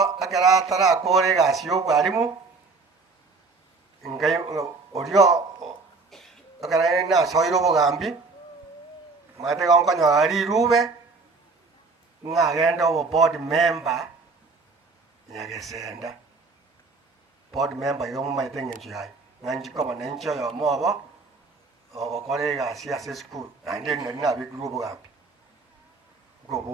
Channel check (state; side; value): quieter; left; 4.1 dB